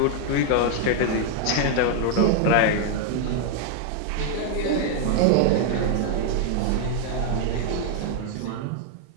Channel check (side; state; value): both; different; correlation 0.00